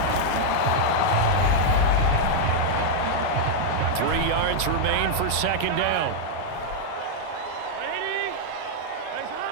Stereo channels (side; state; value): both; different; correlation -0.01